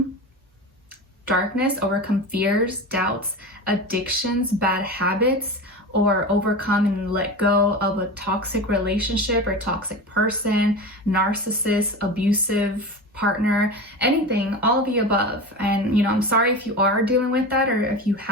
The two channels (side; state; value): both; normal; correlation 0.27